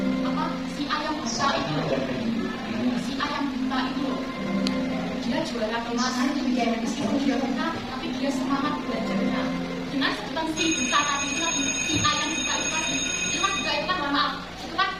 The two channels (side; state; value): both; identical; correlation 1.00